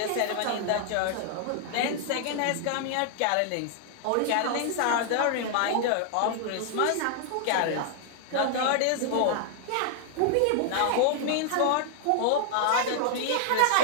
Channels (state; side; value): different; both; correlation 0.00